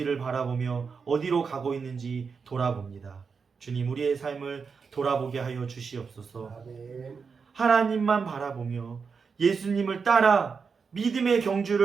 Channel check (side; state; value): left; quieter; 5.5 dB